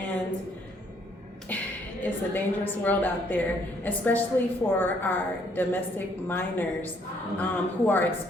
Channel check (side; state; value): both; normal; correlation 0.66